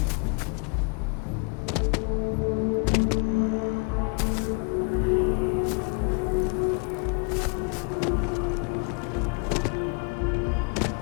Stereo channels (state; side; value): quieter; right; 35.1 dB